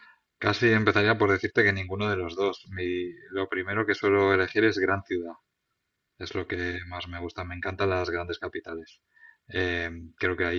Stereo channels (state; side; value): identical; both; correlation 1.00